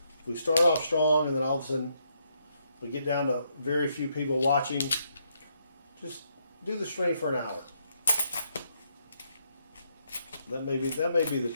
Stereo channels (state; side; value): inverted; both; correlation -0.75